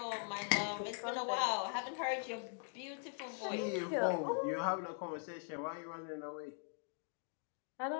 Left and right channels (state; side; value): silent; right; 50 dB below the other